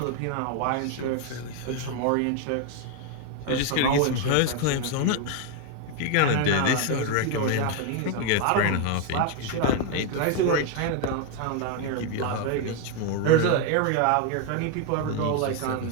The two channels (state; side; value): different; both; correlation 0.01